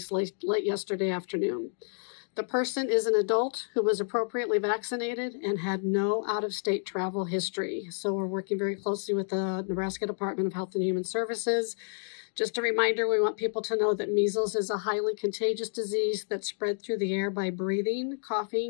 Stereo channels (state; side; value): silent; right; 58 dB below the other